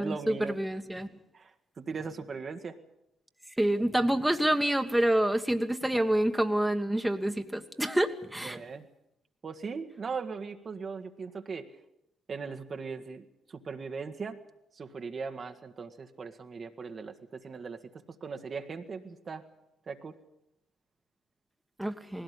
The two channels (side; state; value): both; normal; correlation 0.97